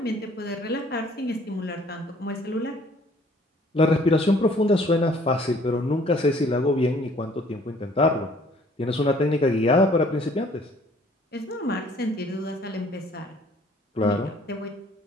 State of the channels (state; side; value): normal; both; correlation 0.57